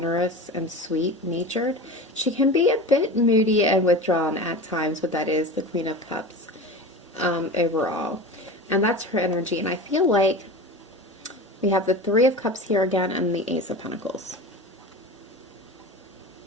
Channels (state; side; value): normal; both; correlation 0.31